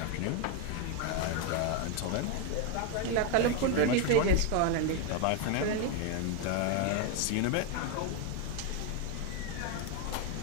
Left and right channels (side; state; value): both; different; correlation 0.02